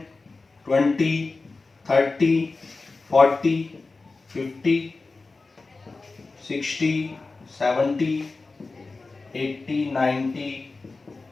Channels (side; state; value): right; quieter; 3.7 dB